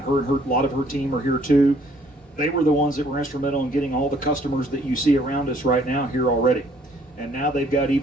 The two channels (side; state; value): both; normal; correlation 0.62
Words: a lot of her team are here too. They were the ones that were instrumental in getting all the customers that you see around us right now here already. And now they've got